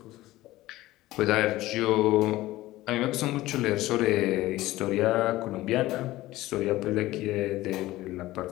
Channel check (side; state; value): right; quieter; 17.1 dB